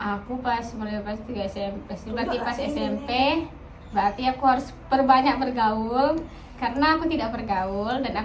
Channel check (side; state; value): both; identical; correlation 1.00